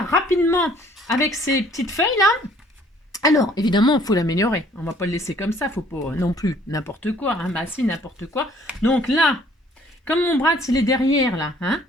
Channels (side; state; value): both; normal; correlation 0.59